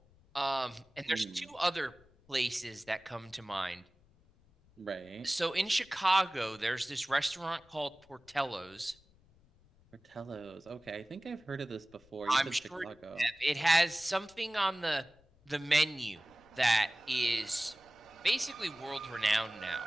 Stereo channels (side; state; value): left; noise; rumble, 29 dB below the sound